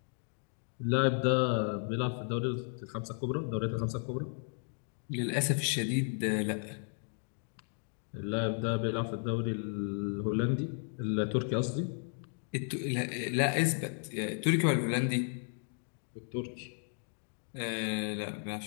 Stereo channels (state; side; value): silent; right; 55 dB below the other